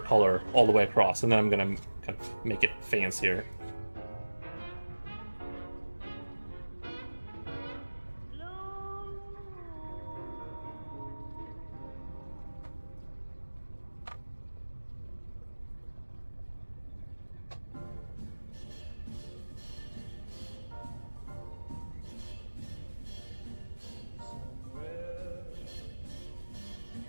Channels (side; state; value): both; inverted; correlation -1.00